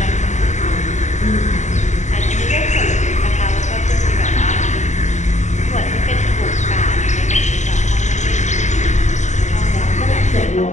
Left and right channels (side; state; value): right; late; 0.34 ms